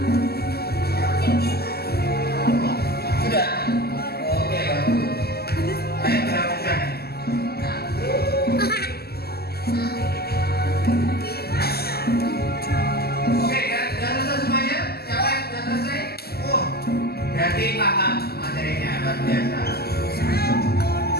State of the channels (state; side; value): late; right; 0.46 ms